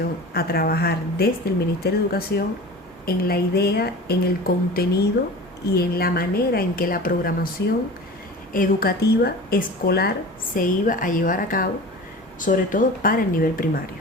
a trabajar desde el Ministerio de Educación en la idea, en el contenido y en la manera en que la programación educativa escolar se iba a llevar a cabo, sobre todo para el nivel primario.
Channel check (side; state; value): both; normal; correlation 0.36